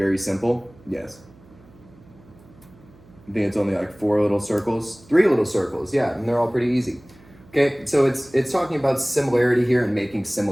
simple. Yes. I think it's only like 4 little circles, 3 little circles, yeah, and they're all pretty easy. Okay, so it's talking about similarity here and making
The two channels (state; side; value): noise; right; hum, 25 dB below the sound